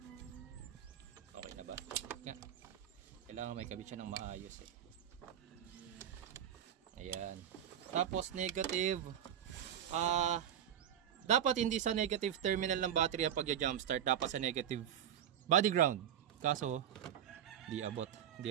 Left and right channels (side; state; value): left; quieter; 9.8 dB